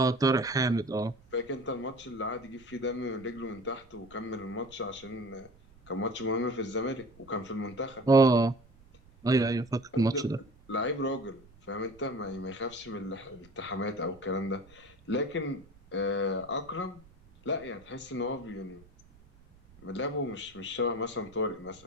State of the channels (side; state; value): right; noise; rumble, 26 dB below the sound